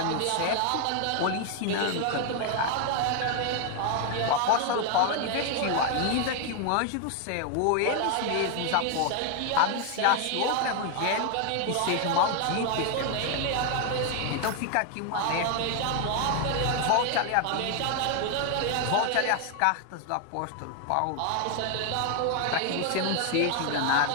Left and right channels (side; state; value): both; different; correlation 0.00